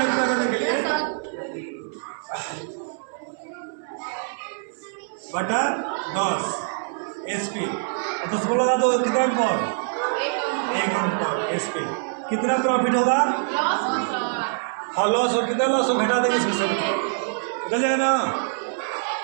पूरा करने के लिए बटा 10 एसपी 10 को लगा दो कितना अंक 1 अंक एसपी कितना प्रॉफिट होगा हाँ लॉस और कितना लॉस हो घटा देंगे इसमें से निकल जाएगा ना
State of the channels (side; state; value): left; silent; 62 dB below the other